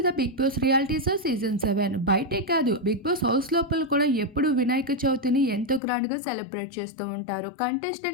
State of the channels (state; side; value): drops out; right; at 5.8 s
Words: the Bigg Boss reality show season 7. బయటే కాదు, బిగ్ బాస్ హౌస్ లోపల కూడా ఎప్పుడు వినాయక చవితిని ఎంతో గ్రాండ్గా సెలబ్రేట్ చేస్తూ ఉంటారు.